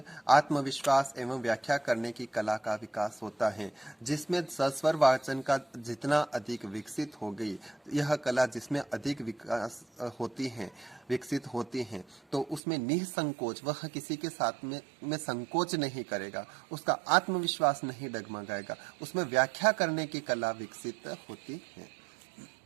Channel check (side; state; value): left; drops out; at 12.6 s